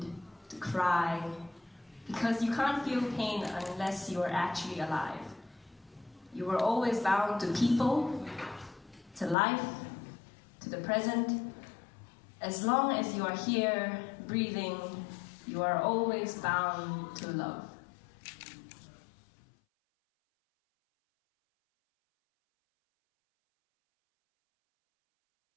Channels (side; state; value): right; drops out; at 9.3 s